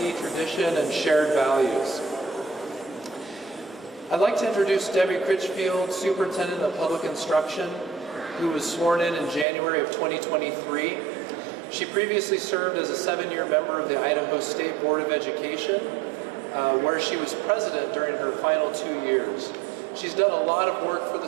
tradition, and shared values. I'd like to introduce Debbie Critchfield, Superintendent of Public Instruction, who was sworn in January of 2023. She previously served as a 7-year member of the Idaho State Board of Education, where she was president during her final 2 years. She's done a lot of work for the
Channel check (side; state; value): left; drops out; at 9.5 s